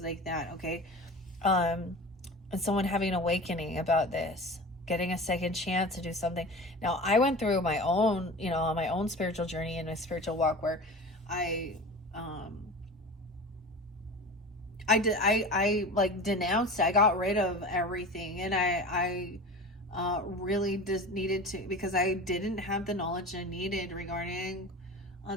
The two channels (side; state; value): both; normal; correlation 0.34